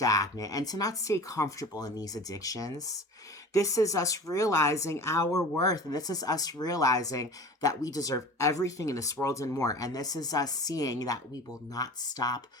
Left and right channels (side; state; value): both; normal; correlation 0.38